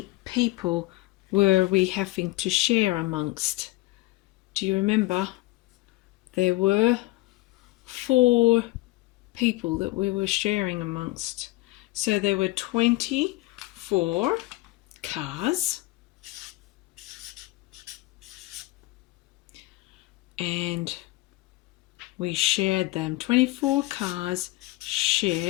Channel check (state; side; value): quieter; right; 19.6 dB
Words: people were we having to share amongst? Do you remember? There were 4 people that we were sharing amongst. So there were 24 cars. And we shared them. 24 cars